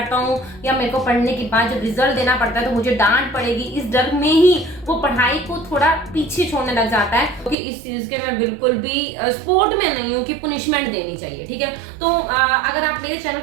हूँ या मेरे को पढ़ने के बाद जब रिजल्ट देना पड़ता है तो मुझे डांट पड़ेगी, इस डर में ही वो पढ़ाई को थोड़ा पीछे छोड़ने लग जाता है। क्योंकि इस चीज के मैं बिल्कुल भी सपोर्ट में नहीं हूँ कि पुनिशमेंट देनी चाहिए, ठीक है। तो अगर आप मेरे चैनल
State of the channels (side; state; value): left; drops out; at 7.6 s